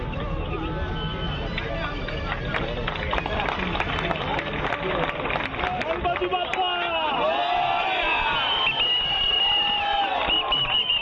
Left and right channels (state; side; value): identical; both; correlation 1.00